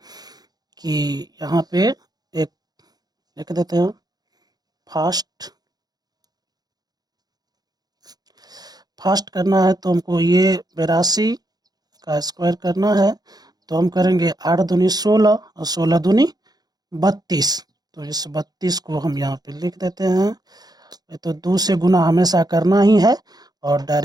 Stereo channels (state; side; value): late; left; 0.19 ms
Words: कि यहाँ पे एक लिख देते हैं फास्ट फास्ट करना है तो हमको ये 82 का स्क्वायर करना है, तो हम करेंगे 8 दूनी 16 और 16 दूनी 32। तो इस 32 को हम यहाँ पे लिख देते हैं। ये तो 2 से गुना हमेशा करना ही है, और